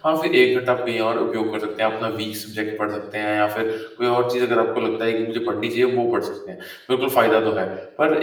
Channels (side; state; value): both; identical; correlation 1.00